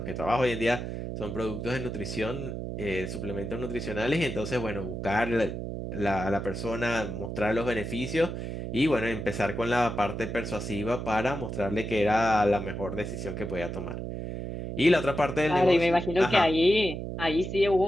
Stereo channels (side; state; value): right; noise; hum, 5 dB below the sound